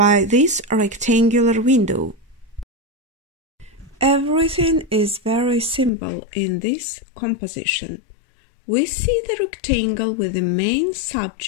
this rectangular window. Everything is very simple in this composition. We see the rectangle with the main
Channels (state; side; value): drops out; right; at 5.9 s